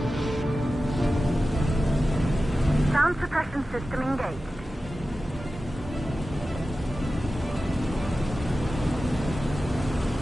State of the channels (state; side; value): normal; both; correlation 0.94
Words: Sound suppression system engaged.